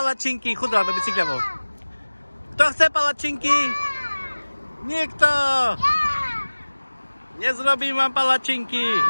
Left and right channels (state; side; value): inverted; both; correlation -1.00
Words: Chudá do bicykľovou. Kto chce palačinky? Nikto! Nezrobím vám palačinky.